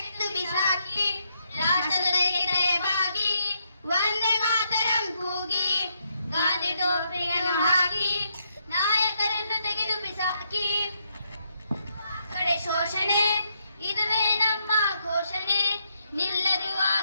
ಬಿಸಾಕಿ, ರಾಷ್ಟ್ರದ ತಲೆಬಾಗಿ ವಂದೇ ಮಾತರಂ ಕೂಗಿ, ಗಾಂಧಿ ಟೋಪಿಯನ್ನು ಹಾಕಿ ನಾಯಕರನ್ನು ತೆಗೆದು ಬಿಸಾಕಿ. ಕಡೆ ಶೋಷಣೆ ಇದುವೇ ನಮ್ಮ ಘೋಷಣೆ, ನಿಲ್ಲದು ಆ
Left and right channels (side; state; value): both; inverted; correlation -0.78